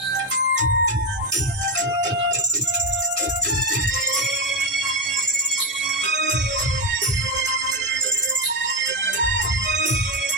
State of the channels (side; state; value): both; normal; correlation 0.10